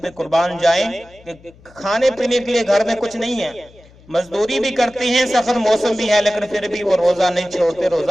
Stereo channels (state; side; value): noise; left; hum, 26 dB below the sound